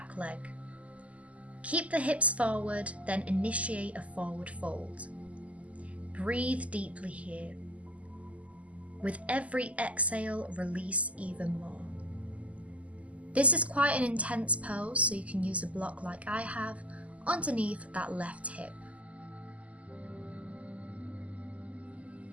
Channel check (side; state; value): left; late; 0.068 ms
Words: leg. Keep the hips forward, then initiate a forward fold. Breathe deeply here. With every exhale, release even more. This is quite an intense pose, so you can use a block like I have underneath that left hip.